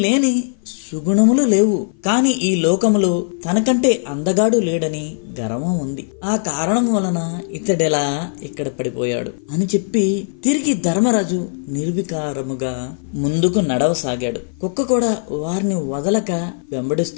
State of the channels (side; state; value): right; silent; 56 dB below the other